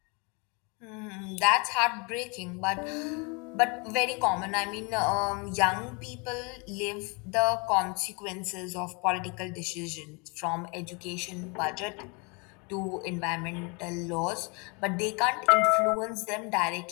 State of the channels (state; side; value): quieter; right; 31.6 dB